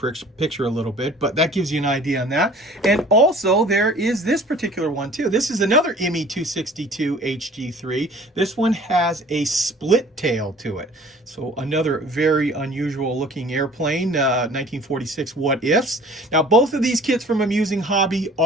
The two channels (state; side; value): normal; both; correlation 0.49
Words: picture a little bit, but that gives you an idea on that. And also there is this particular one too. This is another ME 262 HG3. This one has a split tail to it. So another very unusual looking airplane, 1946 What Ifs. Now both of these kits from Amusing Hobby